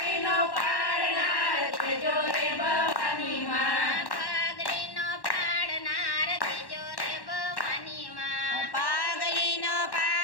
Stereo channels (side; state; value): right; late; 1.1 ms